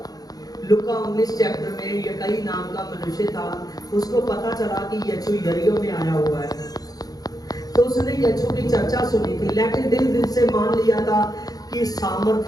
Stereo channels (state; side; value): late; right; 0.18 ms